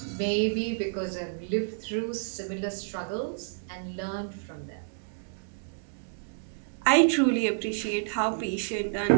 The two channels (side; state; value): left; silent; digital silence